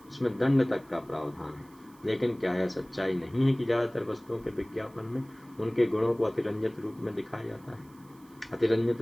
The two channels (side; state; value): right; noise; hiss, 29 dB below the sound